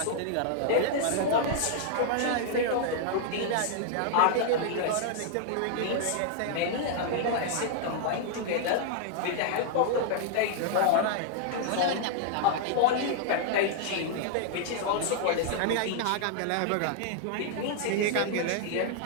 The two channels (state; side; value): different; both; correlation -0.01